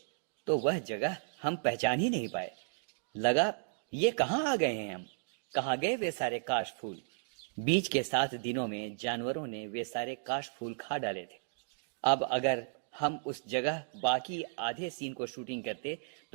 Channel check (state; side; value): silent; left; digital silence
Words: तो वह जगह हम पहचान ही नहीं पाए। लगा ये कहाँ आ गए हैं हम? कहाँ गए वे सारे काश फूल? बीच के 7 दिनों में जानवरों ने वे सारे काश फूल खा डाले थे। अब अगर हम उस जगह बाकी आधे सीन को शूटिंग करते